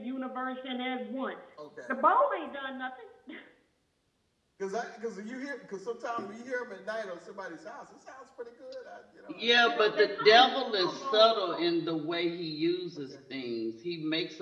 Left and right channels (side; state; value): both; identical; correlation 1.00